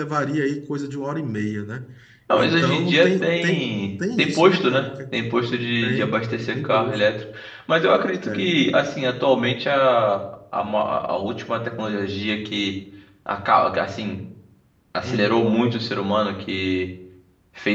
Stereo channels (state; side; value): identical; both; correlation 1.00